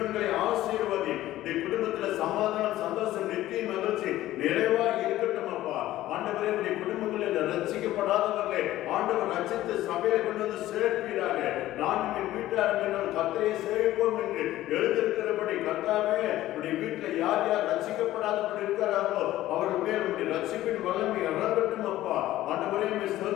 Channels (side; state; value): right; quieter; 14.9 dB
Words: ஆசீர்வதி. இந்த குடும்பத்தில் சமாதானம், சந்தோஷம், நித்திய மகிழ்ச்சி நிறைவாக இருக்கட்டும் அப்பா. ஆண்டவரே, உடைய குடும்பங்களில் ரட்சிக்கப்படாதவர்களை ஆண்டவர் ரட்சித்து சபையை கொண்டு வந்து சேர்ப்பீராக. நான் என் வீட்டார் கர்த்தரை சேவிப்போம் என்று எழுதியிருக்கிறபடி கர்த்தாவே, உடைய வீட்டில் யார் யார் ரட்சிக்கப்படாதபடி இருக்கிறார்களோ அவர்கள் மேல் உடைய ரட்சிப்பின் வல்லமை இறங்கட்டும் அப்பா. ஆண்டவரே,